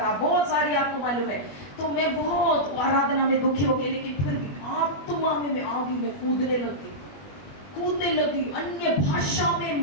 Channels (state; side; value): late; right; 20 ms